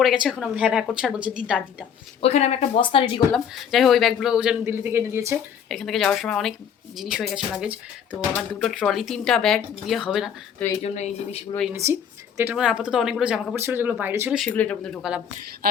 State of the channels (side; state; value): right; quieter; 8.1 dB